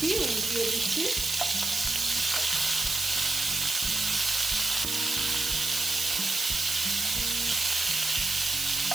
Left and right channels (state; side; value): noise; right; hiss, 2 dB below the sound